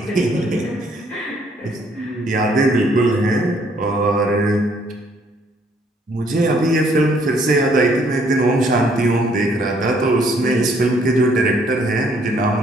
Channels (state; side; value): normal; both; correlation 0.66